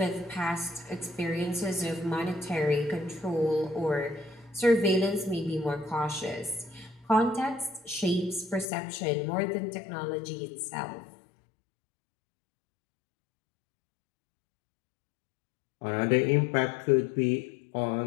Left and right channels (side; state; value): right; drops out; at 8.7 s